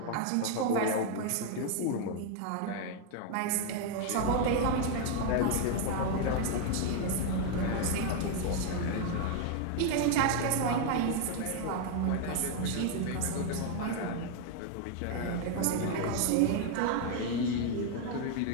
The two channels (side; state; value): both; different; correlation 0.00